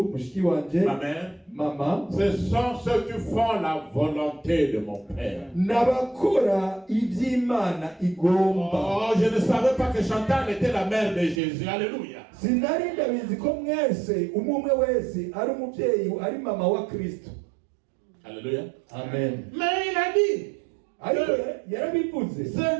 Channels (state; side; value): drops out; left; at 11.4 s